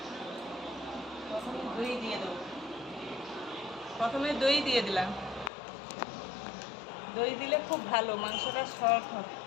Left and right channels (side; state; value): right; drops out; at 5.5 s